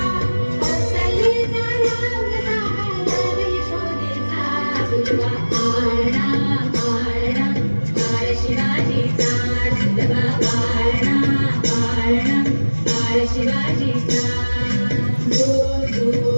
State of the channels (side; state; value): both; inverted; correlation -1.00